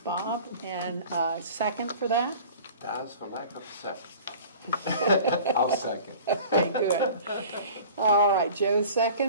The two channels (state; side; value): inverted; both; correlation -0.43